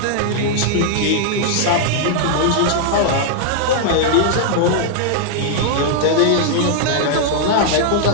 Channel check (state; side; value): different; both; correlation -0.01